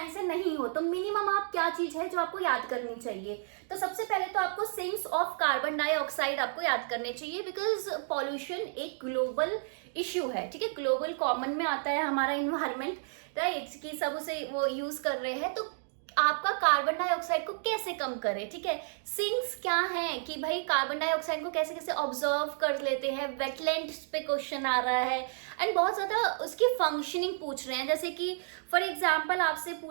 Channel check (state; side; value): silent; left; digital silence